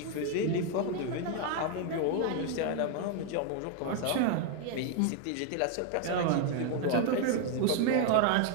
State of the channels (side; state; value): both; different; correlation 0.00